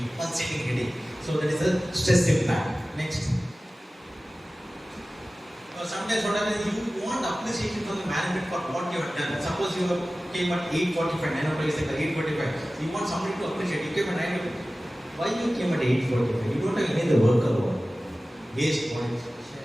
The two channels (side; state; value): both; normal; correlation 0.96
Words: pulsating headache. So that is a stress impact. Next. Sometimes what happens, you want appreciation from the management for what you have done. Suppose you came at 8:45, 9 o'clock is like 8:45. You want somebody to appreciate. You came at 9 o'clock. Why you came at 8:45? You don't have any other work alone. Waste points.